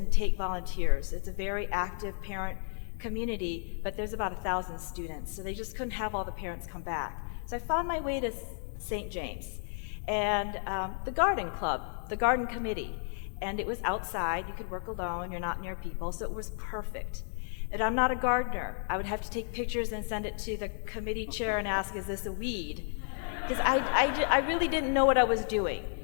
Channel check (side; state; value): right; silent; 56 dB below the other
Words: take volunteers. It's a very active parent community, but there's about 1,000 students, so they just couldn't have all the parents come back. So I found my way to St. James and the garden club, the garden committee, and it was outside. You could work alone, you're not near people, so it was perfect. And I'm not a gardener. I would have to take pictures and send it to the committee chair and ask, is this a weed? Because I really didn't know what I was doing.